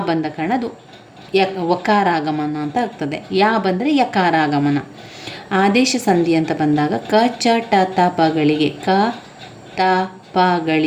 ಬಂದ ಕಾರಣ ಅದು ವಕಾರಾಗಮನ ಅಂತ ಆಗ್ತದೆ. ಯಾ ಬಂದರೆ ಯಕಾರಾಗಮನ. ಆದೇಶ ಸಂಧಿ ಅಂತ ಬಂದಾಗ ಕ ಚ ಟ ತ ಪಗಳಿಗೆ, ಕ ತ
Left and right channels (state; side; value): identical; both; correlation 1.00